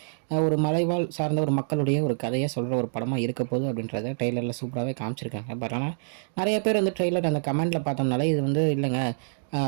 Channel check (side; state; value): left; silent; digital silence